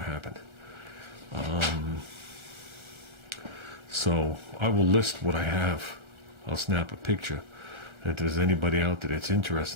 to happen. So I will list what I have. I'll snap a picture. If there's anybody out there that's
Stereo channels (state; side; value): late; left; 1.4 ms